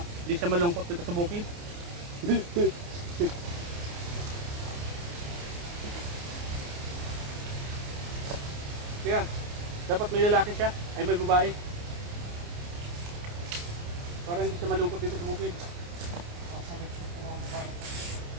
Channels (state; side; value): late; left; 29 ms